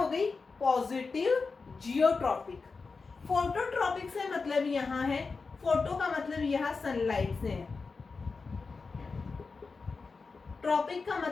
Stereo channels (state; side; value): quieter; right; 4.5 dB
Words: गई, पॉजिटिव जियोट्रॉपिक। फोटोट्रॉपिक से मतलब यहाँ है, फोटो का मतलब यहाँ सनलाइट से है, ट्रॉपिक का